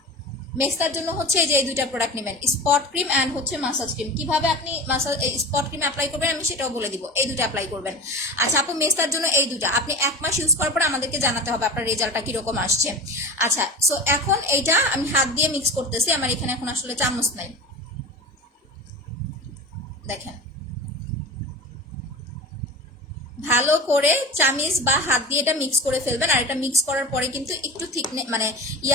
মেস্তার জন্য হচ্ছে এই যে এই 2টা প্রোডাক্ট নেবেন, স্পট ক্রিম অ্যান্ড হচ্ছে মাসাজ ক্রিম। কিভাবে আপনি স্পট ক্রিম অ্যাপ্লাই করবেন আমি সেটাও বলে দিব, এই 2টা অ্যাপ্লাই করবেন। আচ্ছা আপু মেস্তার জন্য এই 2টা আপনি 1 মাস ইউজ করার পরে আমাদেরকে জানাতে হবে আপনার রেজাল্টটা কিরকম আসছে। আচ্ছা সো এখন এইটা আমি হাত দিয়ে মিক্স করতেছি, আমার এখানে এখন আসলে চামচ নাই। দেখেন ভালো করে চামিচ বা হাত দিয়ে এটা মিক্স করে ফেলবেন। আর এটা মিক্স করার পরে কিন্তু একটু ঠিক মানে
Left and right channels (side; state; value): both; normal; correlation 0.31